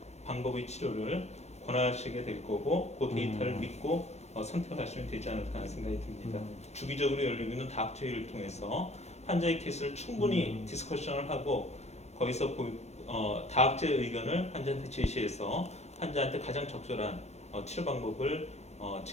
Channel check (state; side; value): late; right; 0.32 ms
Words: 방법의 치료를 권하시게 될 거고 그 데이터를 믿고 선택하시면 되지 않을까 하는 생각이 듭니다. 주기적으로 열리고 있는 다학제 회의를 통해서 환자의 케이스를 충분히 디스커션을 하고 거기서 다학제 의견을 환자한테 제시해서 환자한테 가장 적절한 치료 방법을